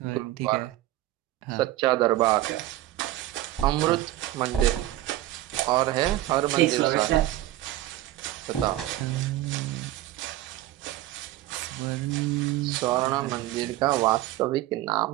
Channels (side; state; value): left; quieter; 15.2 dB